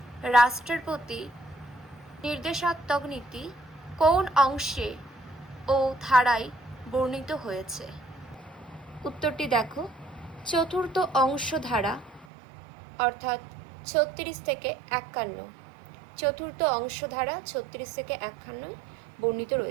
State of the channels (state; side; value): drops out; left; at 12.2 s